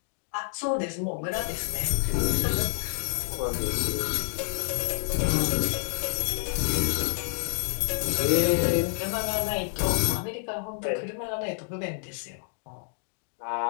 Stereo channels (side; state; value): right; silent; digital silence